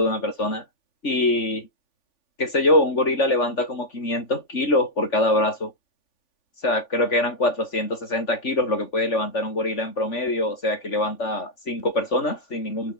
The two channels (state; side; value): late; right; 3.5 ms